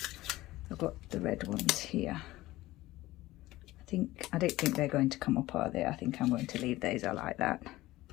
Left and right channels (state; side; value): quieter; right; 17.5 dB